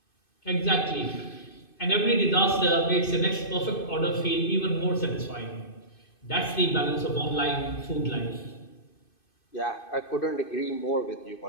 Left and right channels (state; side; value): late; right; 2.6 ms